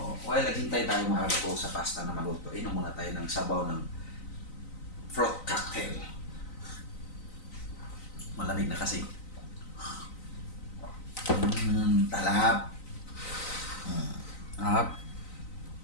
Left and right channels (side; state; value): right; late; 3.9 ms